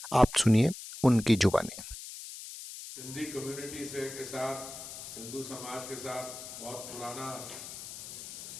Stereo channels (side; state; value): left; noise; hiss, 11 dB below the sound